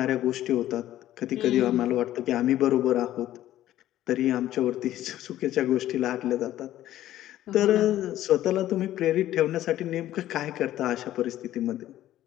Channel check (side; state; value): right; quieter; 13.4 dB